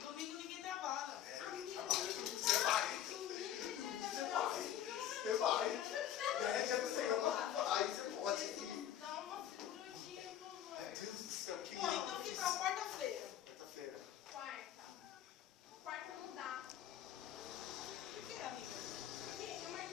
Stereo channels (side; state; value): right; quieter; 10.9 dB